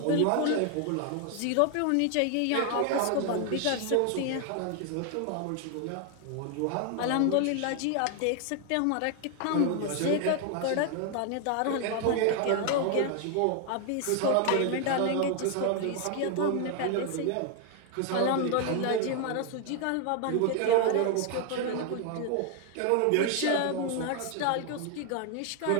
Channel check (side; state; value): both; different; correlation 0.00